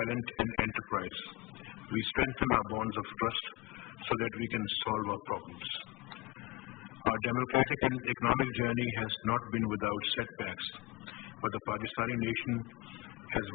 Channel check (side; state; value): right; quieter; 21.6 dB